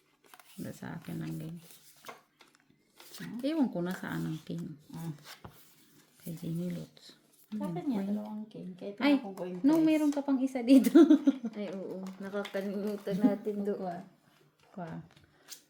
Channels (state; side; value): identical; both; correlation 1.00